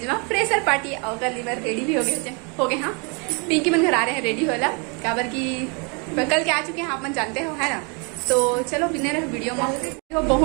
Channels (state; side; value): quieter; left; 33.7 dB